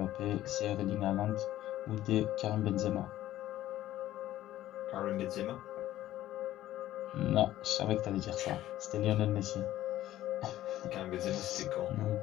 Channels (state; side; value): quieter; right; 13.9 dB